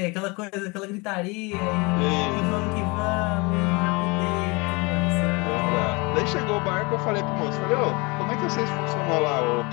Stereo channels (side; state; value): right; quieter; 27.4 dB